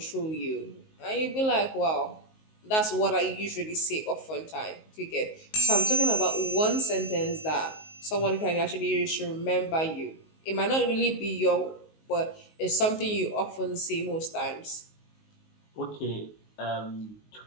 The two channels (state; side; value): late; right; 19 ms